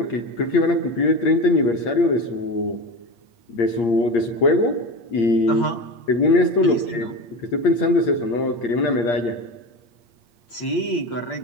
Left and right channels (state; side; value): late; right; 8.6 ms